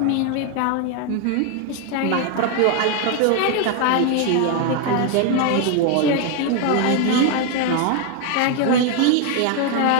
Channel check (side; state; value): both; different; correlation 0.01